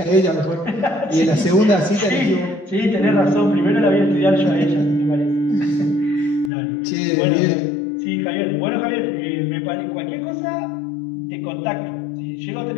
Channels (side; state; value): right; drops out; at 6.5 s